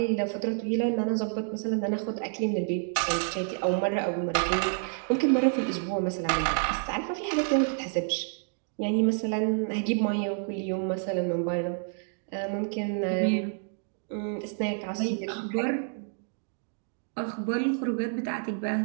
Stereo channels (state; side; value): silent; left; 59 dB below the other